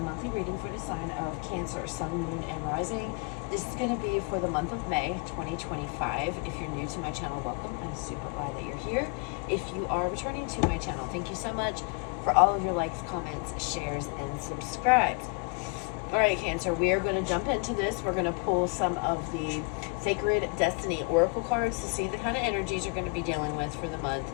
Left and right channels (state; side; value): quieter; right; 33.8 dB